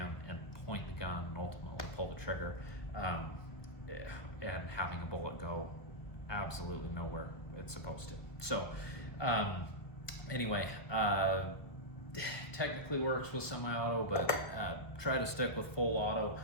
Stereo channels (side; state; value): right; late; 1.4 ms